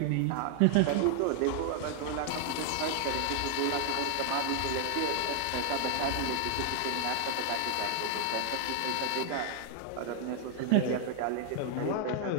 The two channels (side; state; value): both; different; correlation 0.00